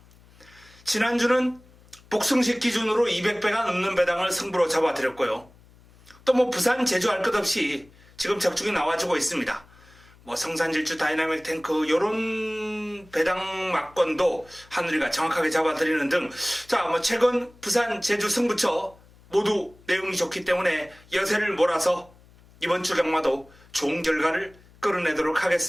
지난주는 복승식 기준으로 200배가 넘는 배당을 승부로 잡아드렸고요. 또 부산, 제주 할 것 없이 지금 적중이 나와주고 있습니다. 성산질주, 다이나믹 탱크 요런 배당 막권도 하늘이가 정확하게 잡아드리는 등 최근 부산, 제주 승부처 모두 내용이 좋기 때문에 여세를 몰아서 이번 주 경마도 좋은 결과를 끌어내도록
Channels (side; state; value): left; noise; hum, 26 dB below the sound